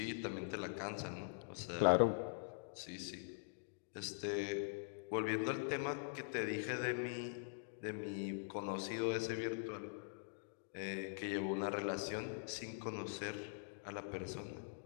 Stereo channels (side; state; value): right; silent; digital silence